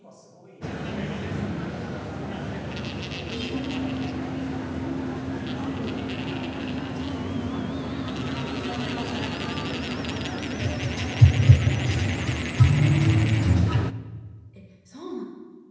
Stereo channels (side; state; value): both; identical; correlation 1.00